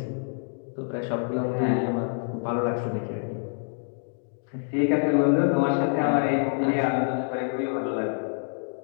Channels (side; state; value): right; silent; digital silence